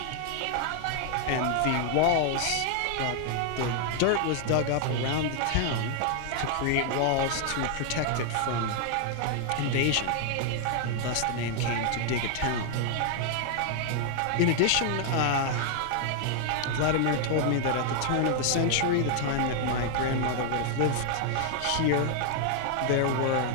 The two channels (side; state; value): both; different; correlation 0.00